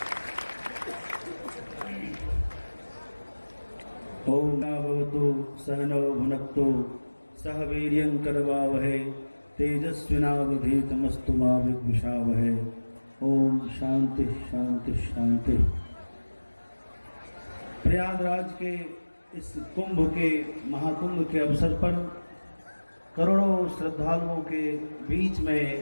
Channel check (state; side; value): inverted; both; correlation -1.00